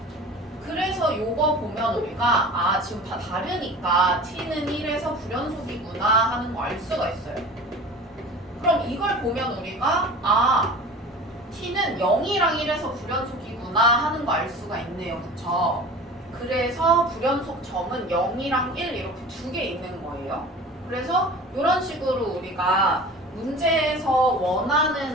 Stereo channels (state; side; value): normal; both; correlation 0.39